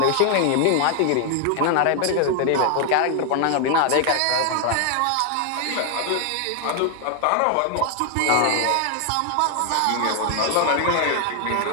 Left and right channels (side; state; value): both; different; correlation 0.00